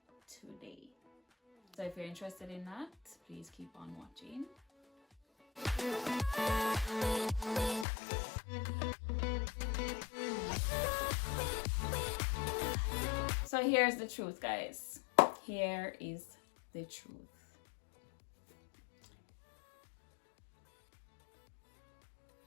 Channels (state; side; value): drops out; right; at 7.9 s